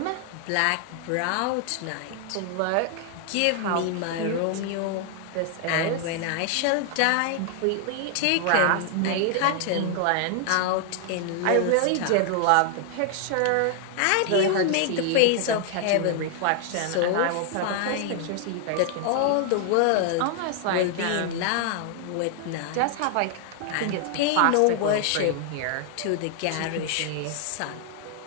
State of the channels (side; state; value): both; different; correlation 0.00